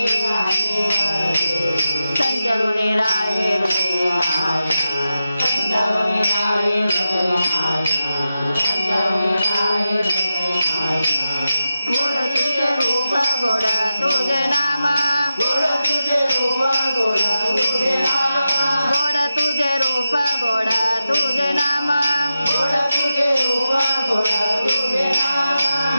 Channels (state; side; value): inverted; both; correlation -0.91